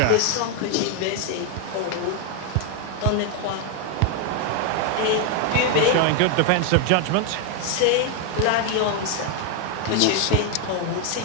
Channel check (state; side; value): different; both; correlation 0.01